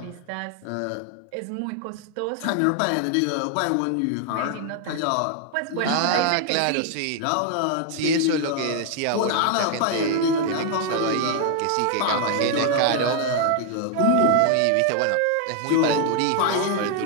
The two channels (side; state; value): both; different; correlation 0.00